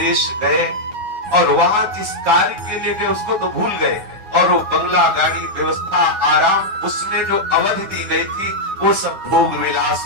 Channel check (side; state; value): left; late; 9.5 ms